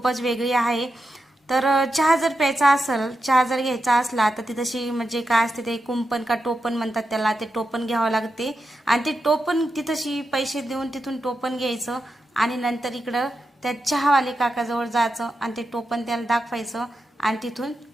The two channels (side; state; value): both; normal; correlation 0.88